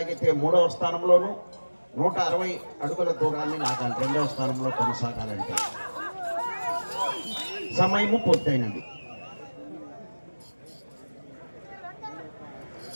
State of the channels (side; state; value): both; inverted; correlation -1.00